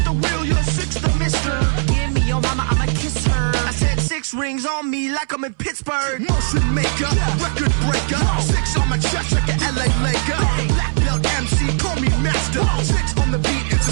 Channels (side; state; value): left; silent; 62 dB below the other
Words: the wheel, you're 6 the mister. Give me your mama, I'ma kiss her. I said 6 rings on me like I'm in Pittsburgh. Motion maker, record breaker. 6 on my chest like an LA Laker. Black belt MC, call me master. 6 on the beat, it's a